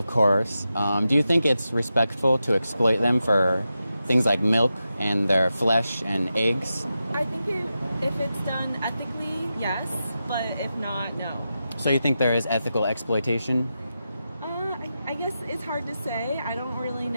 course. Do you think it's respectful to exploit them for things like milk and their flesh and eggs? I think if it's done ethically, yes, but if not, no. So you think there is ethical exploitation? I guess it's hard to say. I don't really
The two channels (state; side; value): inverted; both; correlation -0.90